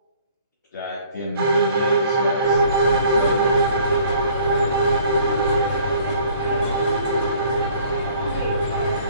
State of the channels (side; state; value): both; inverted; correlation -0.55